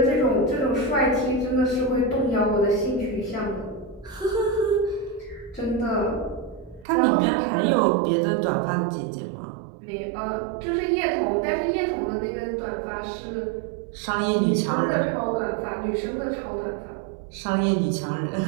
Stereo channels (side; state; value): left; drops out; at 6.9 s